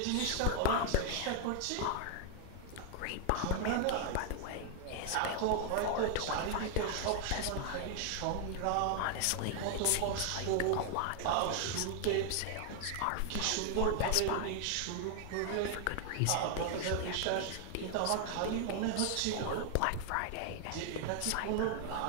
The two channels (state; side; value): different; both; correlation 0.00